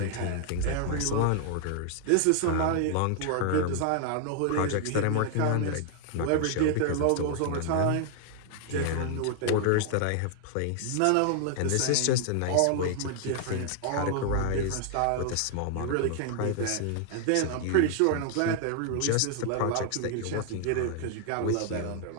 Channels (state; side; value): different; both; correlation 0.00